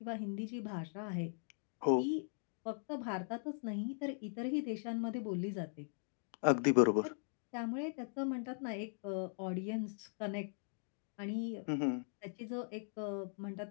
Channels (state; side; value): silent; right; digital silence